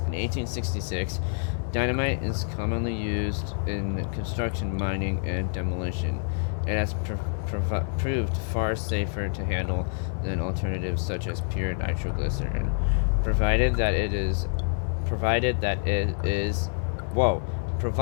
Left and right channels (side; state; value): right; silent; 56 dB below the other